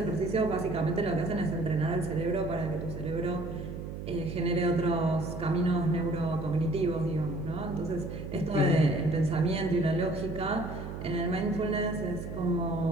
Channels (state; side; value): noise; right; hum, 8 dB below the sound